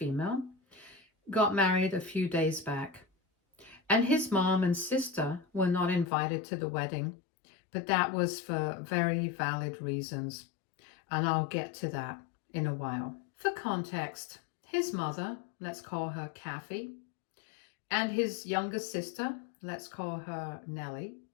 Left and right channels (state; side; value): drops out; right; at 6.1 s